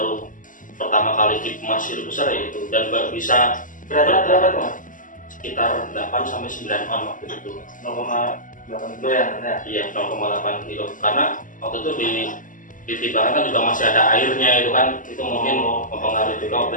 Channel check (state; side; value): late; right; 0.38 ms